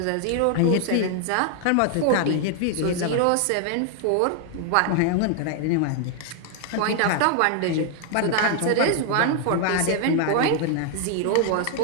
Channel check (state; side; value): different; both; correlation 0.00